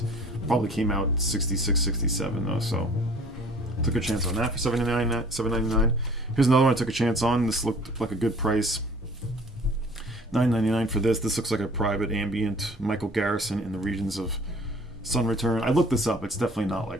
Probably came out 66, 67 though, so took a chance on that for $7.99. Here's another one I took a chance on. This looked like a good price. $9.99 for this. This looks like a private ambient Michael Garrison in the regions of Sun Return. I looked this up. It's definitely not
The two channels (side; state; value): both; normal; correlation 0.51